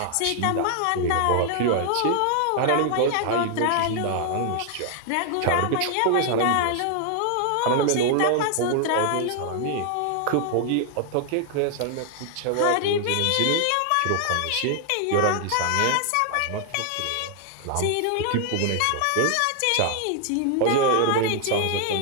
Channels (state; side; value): different; both; correlation 0.00